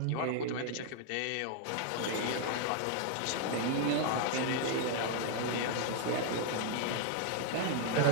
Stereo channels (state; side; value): different; both; correlation 0.00